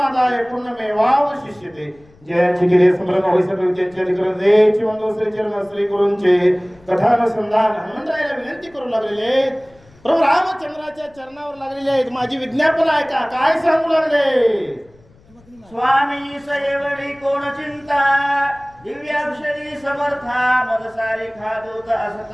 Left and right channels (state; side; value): noise; left; rumble, 29 dB below the sound